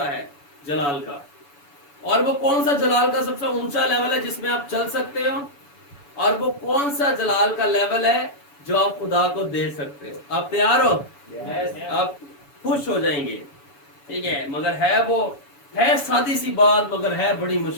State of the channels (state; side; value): late; right; 7.0 ms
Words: ہے جلال کا، اور وہ کون سا جلال کا سب سے اونچا لیول ہے جس میں آپ چل سکتے ہو، اور وہ کون سا جلال کا لیول ہے جو آپ خدا کو دے سکتے ہو. آپ تیار ہو؟ آپ خوش ہو جائیں گے. ٹھیک ہے؟ مگر وہ ہے سادی سی بات، مگر ہے بڑی